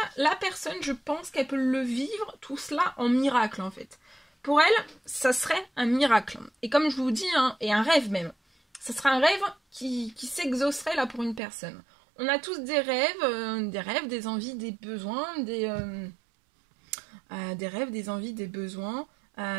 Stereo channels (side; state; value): left; drops out; at 11.4 s